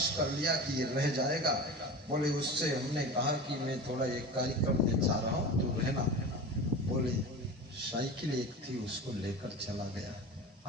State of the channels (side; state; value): both; normal; correlation 0.31